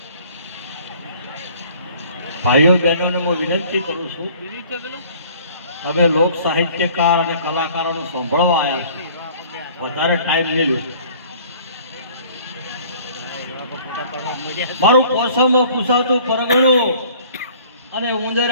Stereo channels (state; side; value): inverted; both; correlation -0.52